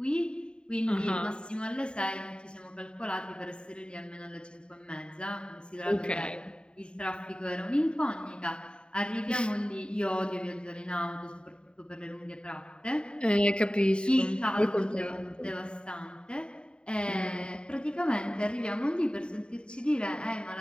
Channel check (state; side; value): late; right; 0.051 ms